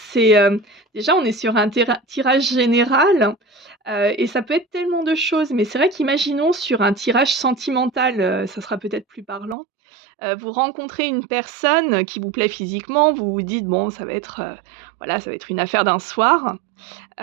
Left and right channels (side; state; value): left; drops out; at 9.6 s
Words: déjà on est sur un tirage général, et ça peut être tellement de choses. Mais c'est vrai qu'imaginons sur un tirage sentimental, ça sera peut-être plus parlant. Vous rencontrez une personne qui vous plaît physiquement, vous vous dites: «Bon, ça va être, voilà, ça va être une affaire d'un soir».